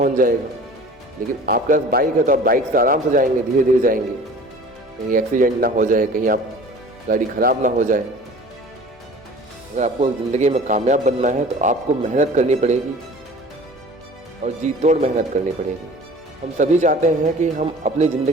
जाएगा, लेकिन आपके पास बाइक है तो आप बाइक से आराम से जाएंगे, धीरे धीरे जाएंगे, कहीं एक्सीडेंट ना हो जाए, कहीं आप गाड़ी ख़राब ना हो जाए। अगर आपको ज़िंदगी में कामयाब बनना है तो आपको मेहनत करनी पड़ेगी और जी तोड़ मेहनत करनी पड़ेगी। हम सभी चाहते हैं कि हम अपनी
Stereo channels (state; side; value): normal; both; correlation 0.44